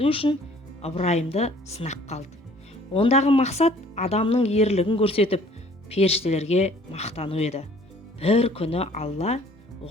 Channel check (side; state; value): both; normal; correlation 0.55